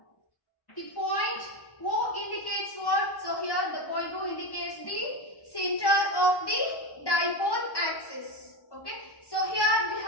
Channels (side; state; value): right; late; 1.1 ms